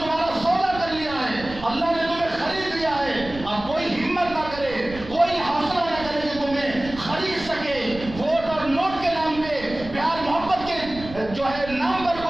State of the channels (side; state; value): right; noise; rumble, 14 dB below the sound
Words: سودا کر لیا ہے، اللہ نے تمہیں خرید لیا ہے. اب کوئی ہمت نہ کرے، کوئی حوصلہ نہ کرے کہ تمہیں خرید سکے. ووٹ اور نوٹ کے نام پہ، پیار محبت کے جو ہے نام پر